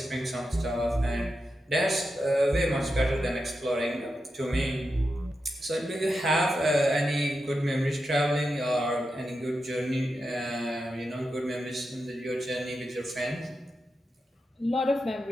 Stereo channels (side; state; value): both; normal; correlation 0.88